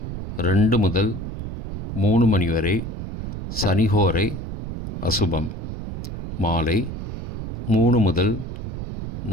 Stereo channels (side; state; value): right; noise; rumble, 5 dB below the sound